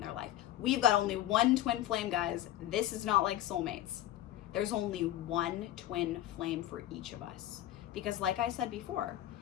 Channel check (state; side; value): quieter; right; 13.2 dB